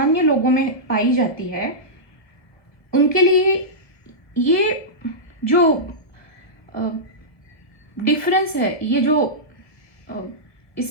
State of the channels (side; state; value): right; late; 1.0 ms